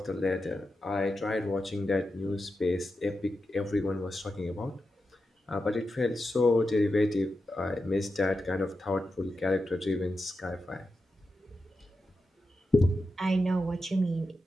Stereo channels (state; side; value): normal; both; correlation 0.89